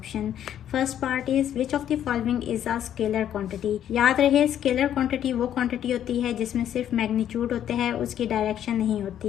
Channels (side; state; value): right; quieter; 10.4 dB